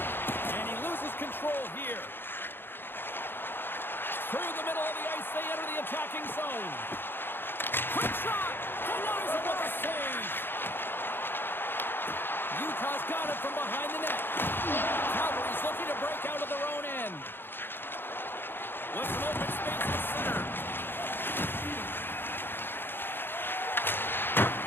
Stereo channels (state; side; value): late; right; 0.10 ms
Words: And he loses control here. Through the middle of the ice, they enter the attacking zone. Quick shot! Denies it with a save! Utah's got it from behind the net. Calgary's looking to break out of their own end. With some open space at center.